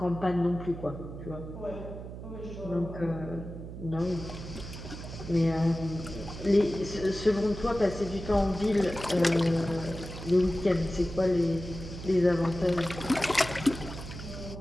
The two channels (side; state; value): right; noise; hum, 10 dB below the sound